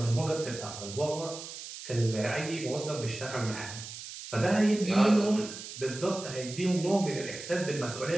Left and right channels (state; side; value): noise; right; hiss, 11 dB below the sound